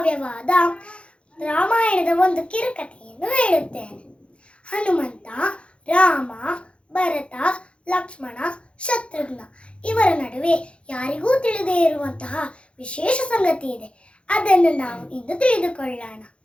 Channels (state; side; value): late; right; 0.059 ms